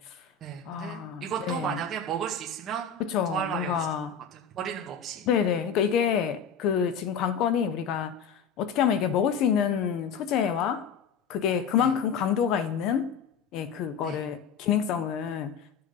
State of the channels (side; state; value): right; quieter; 6.1 dB